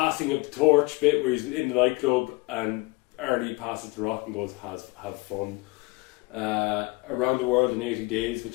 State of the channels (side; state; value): right; quieter; 24.6 dB